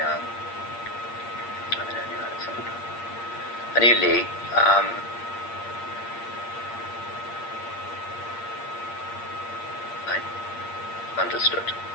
I knew Alexander. I knew Lee. I understood.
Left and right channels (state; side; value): late; right; 8.6 ms